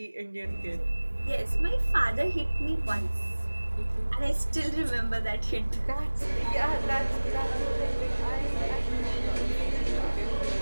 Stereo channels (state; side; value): inverted; both; correlation -1.00